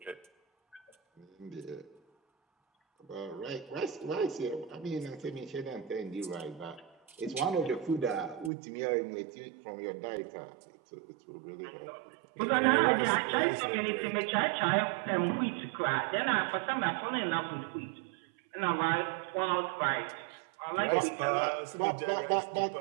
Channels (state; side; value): drops out; left; at 8.5 s